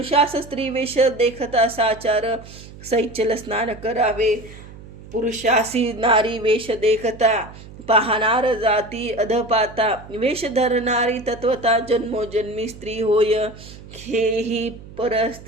स्त्री वेश देखता साचार सैचल स्नान करावे पुरुषासी नारी वेश देखता पाहणार जाती अधपाता वेश धरणारी तत्वता जन्मोजन्मी स्त्री होय हेही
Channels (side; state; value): right; noise; hum, 17 dB below the sound